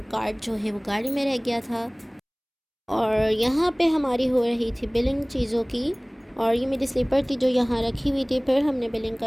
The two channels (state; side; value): identical; both; correlation 1.00